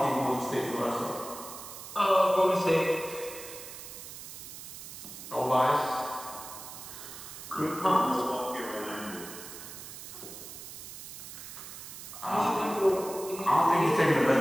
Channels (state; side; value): noise; right; hiss, 12 dB below the sound